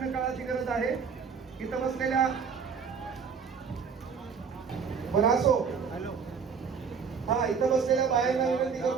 काळाची गरज आहे. इथं बसलेल्या असो हा इथं बसलेल्या बायांना विनंती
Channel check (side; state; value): left; quieter; 6.1 dB